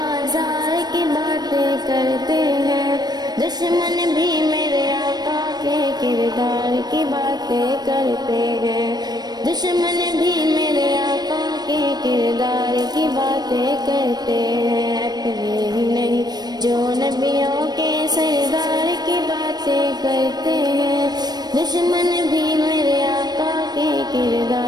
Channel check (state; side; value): late; left; 0.19 ms